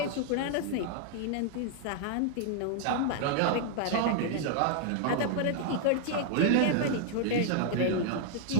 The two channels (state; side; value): different; both; correlation 0.00